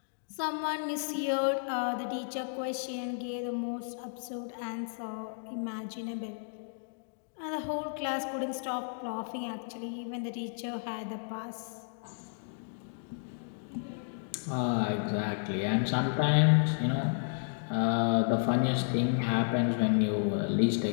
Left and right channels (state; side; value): silent; right; digital silence